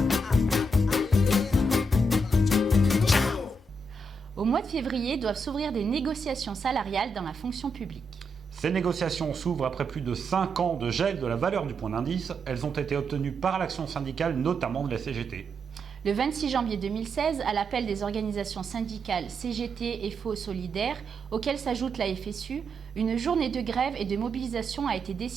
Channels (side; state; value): both; normal; correlation 0.81